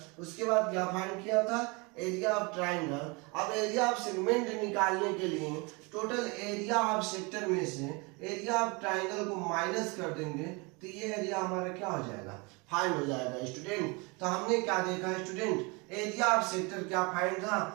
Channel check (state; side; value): quieter; left; 28.6 dB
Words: उसके बाद क्या फाइंड किया था, एरिया ऑफ ट्रायंगल। अब एरिया ऑफ सेगमेंट निकालने के लिए टोटल एरिया ऑफ सेक्टर में से एरिया ऑफ ट्रायंगल को माइनस कर देंगे, तो ये एरिया हमारा क्या हो जाएगा, फाइंड हो जाएगा स्टूडेंट। तो हमने क्या देखा स्टूडेंट, एरिया ऑफ सेक्टर क्या फाइंड था,